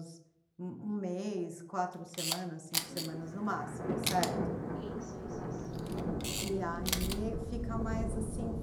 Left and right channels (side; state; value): both; identical; correlation 1.00